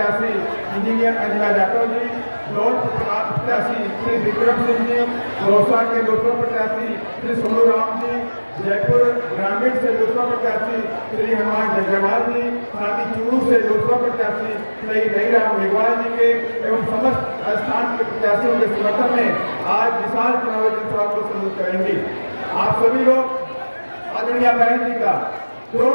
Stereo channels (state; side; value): inverted; both; correlation -1.00